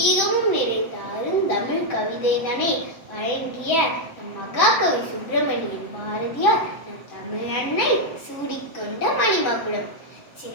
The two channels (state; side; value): late; right; 7.9 ms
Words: நிறைந்த அருந்தமிழ் கவிதைதனை வழங்கிய நம் மகாகவி சுப்பிரமணியன் பாரதியார் நம் தமிழ் அன்னை சூடிக்கொண்ட மணிமகுடம்.